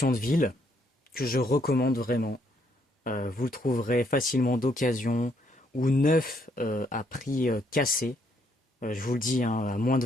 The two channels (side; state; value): both; normal; correlation 0.71